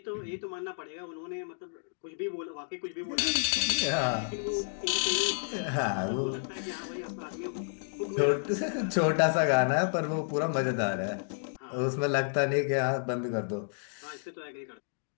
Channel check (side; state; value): right; silent; digital silence